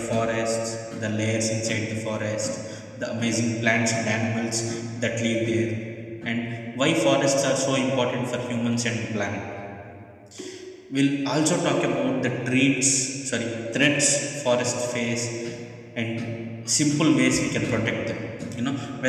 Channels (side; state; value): both; identical; correlation 1.00